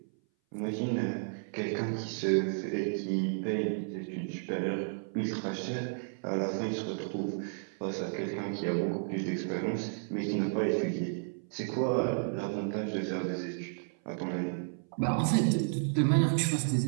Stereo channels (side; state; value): left; silent; 56 dB below the other